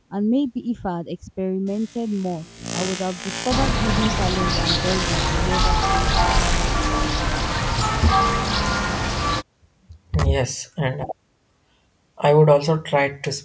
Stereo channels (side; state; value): both; identical; correlation 1.00